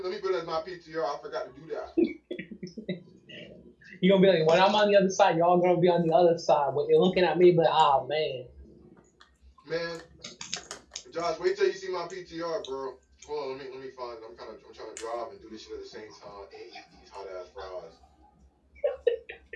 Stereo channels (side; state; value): both; identical; correlation 1.00